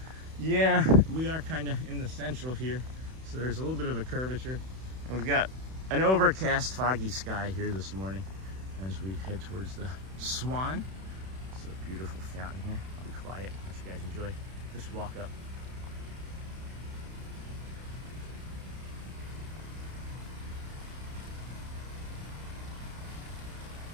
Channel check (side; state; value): left; late; 31 ms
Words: Yeah, we are kind of in the central here, so there's a little bit of a curvature. And we've got an overcast, foggy sky here this morning as we head towards the Swan. It's a beautiful fountain here. I'll be quiet, let you guys enjoy. Just walk up.